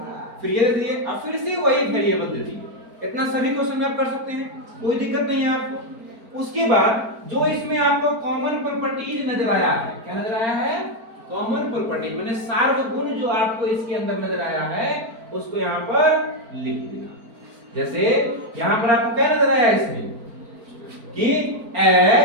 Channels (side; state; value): left; late; 4.4 ms